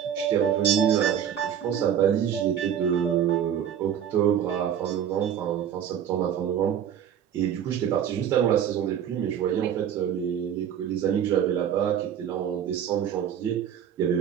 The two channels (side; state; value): left; quieter; 9.2 dB